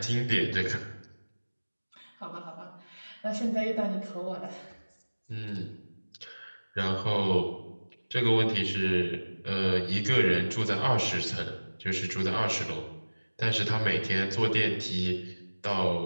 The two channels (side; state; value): both; inverted; correlation -1.00